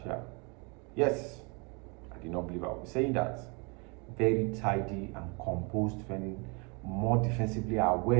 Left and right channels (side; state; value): left; quieter; 31.7 dB